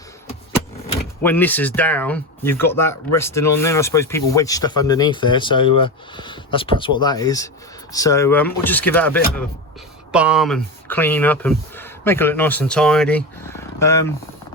when this is down, you've got that resting on there. I suppose people wedge stuff underneath there, so that's perhaps what that is. So we'll just give that a bit of a balm and clean up and make it look nice and tidy.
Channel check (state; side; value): normal; both; correlation 0.20